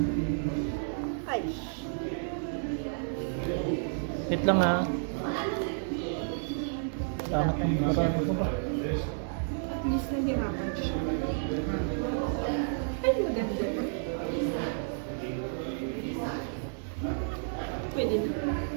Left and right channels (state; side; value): silent; left; 57 dB below the other